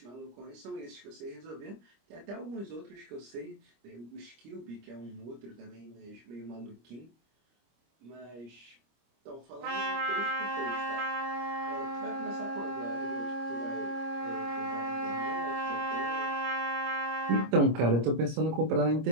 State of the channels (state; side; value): late; left; 25 ms